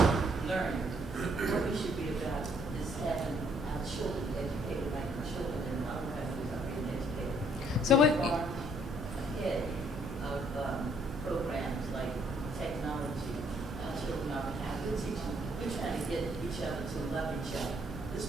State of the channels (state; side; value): normal; both; correlation 0.66